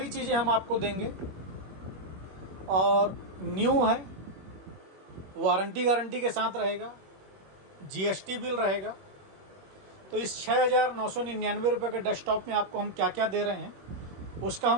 चीज़ें हम आपको देंगे और न्यू है, वारंटी गारंटी के साथ रहेगा, जीएसटी बिल रहेगा। तो इस 6,999 रुपये के डेस्कटॉप में आपको हम क्या क्या दे रहे हैं, उसका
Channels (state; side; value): late; left; 21 ms